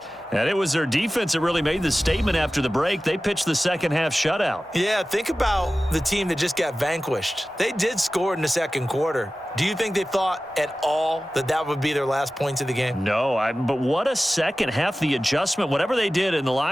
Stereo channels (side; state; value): both; normal; correlation 0.96